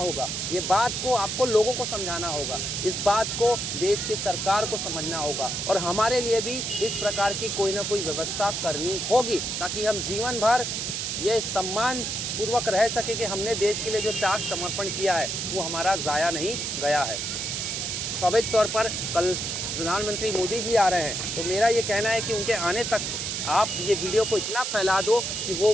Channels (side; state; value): right; noise; hiss, 2 dB below the sound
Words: ये बात को आपको लोगों को समझाना होगा, इस बात को देश की सरकार को समझना होगा और हमारे लिए भी इस प्रकार की कोई ना कोई व्यवस्था करनी होगी, ताकि हम जीवन भर ये सम्मान पूर्वक रह सके कि हमने देश के लिए जो त्याग समर्पण किया है वो हमारा ज़ाया नहीं गया है। स्वाभाविक तौर पर कल प्रधानमंत्री मोदी जी आ रहे हैं, तो मेरा ये कहना है कि उनके आने तक आप ये वीडियो को इतना फैला दो कि वो